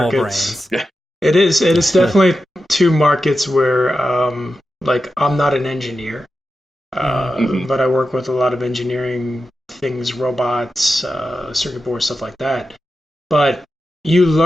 brains. It is definitely two markets where, like, I'm not an engineer, but I work with a lot of engineering things, robots, circuit boards, stuff like that. But you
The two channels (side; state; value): both; normal; correlation 0.91